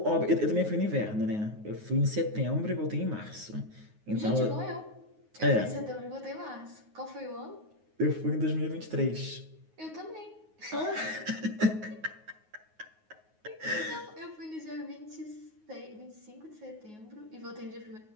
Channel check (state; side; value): late; left; 9.4 ms